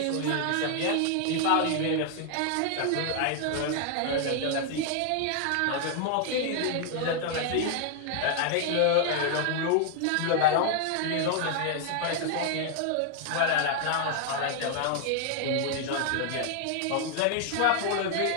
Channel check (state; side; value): different; both; correlation 0.00